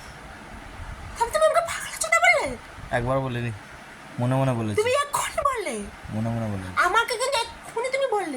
তুমি আমাকে পাগল চোদা বললে? একবার বলিনি, মনে মনে বলেছি। তুমি এক্ষুনি বললে? মনে মনে বলেছি। আমাকে কিন্তু এক্ষুনি তুমি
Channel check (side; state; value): both; identical; correlation 1.00